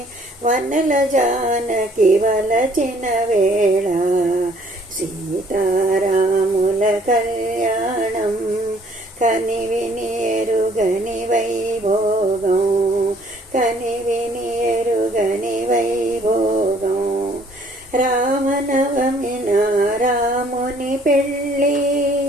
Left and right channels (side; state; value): both; normal; correlation 0.60